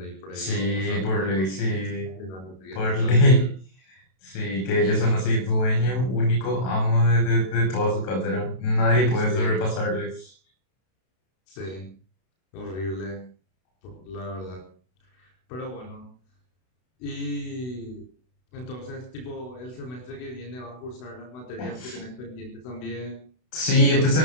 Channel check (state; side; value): late; right; 32 ms